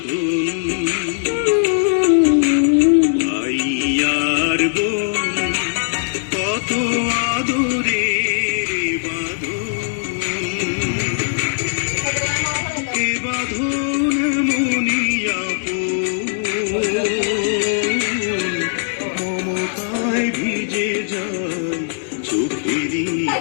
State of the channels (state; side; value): silent; right; digital silence